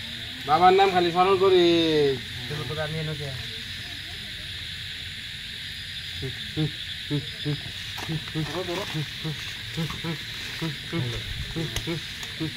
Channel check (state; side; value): identical; both; correlation 1.00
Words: বাবার নাম খালি স্মরণ করিস